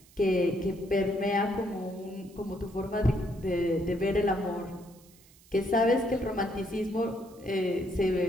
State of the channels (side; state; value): right; noise; hiss, 26 dB below the sound